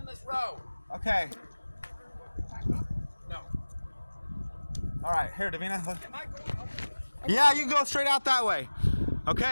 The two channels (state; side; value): inverted; both; correlation -1.00